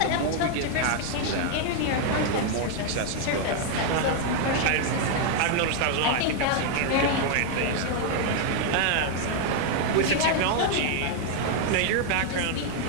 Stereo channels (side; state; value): both; different; correlation 0.00